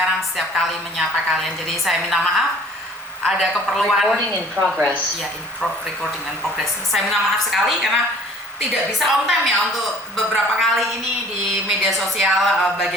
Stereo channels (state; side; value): normal; both; correlation 0.47